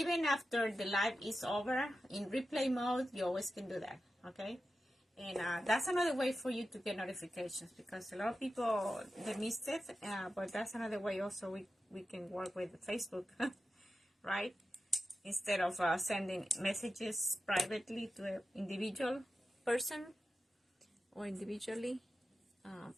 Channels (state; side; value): normal; both; correlation 0.92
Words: after the live is over, in replay mode, you always can do that, okay? And that's another way for you to get notifications, because a lot of people, they missed it, but that's another way also we can work with Facebook, right? Instead of sending messages privately to an individual person or individually,